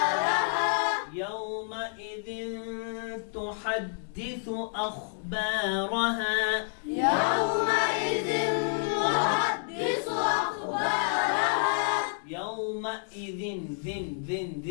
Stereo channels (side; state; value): right; silent; digital silence